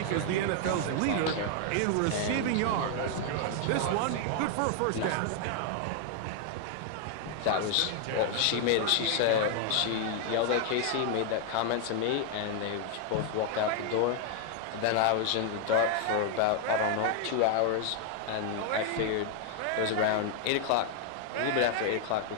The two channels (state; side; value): different; both; correlation 0.00